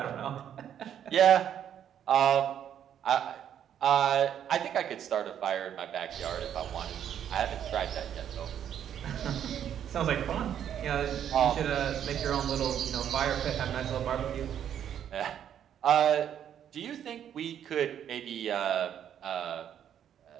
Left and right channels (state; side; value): quieter; left; 9.6 dB